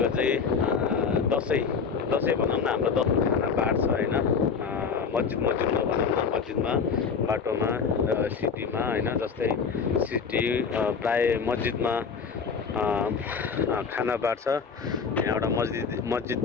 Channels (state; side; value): quieter; right; 5.7 dB